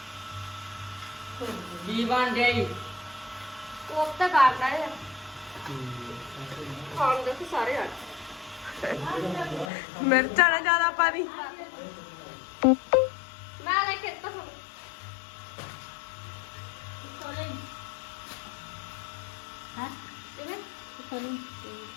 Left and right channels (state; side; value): drops out; right; at 9.7 s